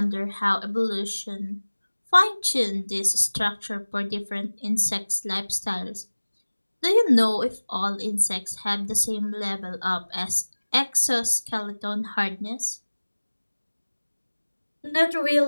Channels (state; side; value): inverted; both; correlation -1.00